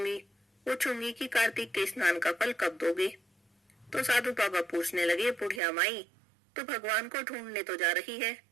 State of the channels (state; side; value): drops out; left; at 5.6 s